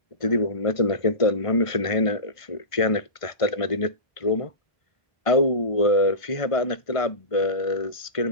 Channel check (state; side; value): late; right; 1.5 ms